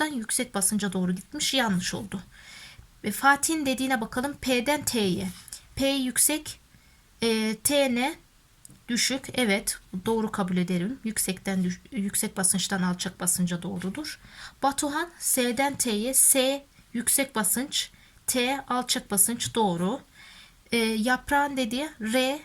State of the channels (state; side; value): identical; both; correlation 1.00